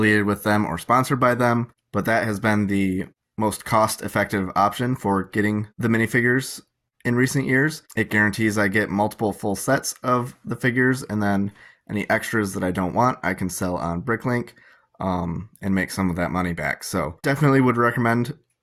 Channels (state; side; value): identical; both; correlation 1.00